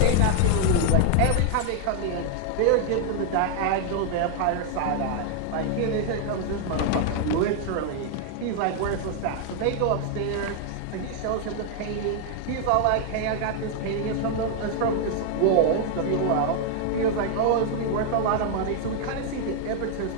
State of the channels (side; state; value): both; different; correlation 0.00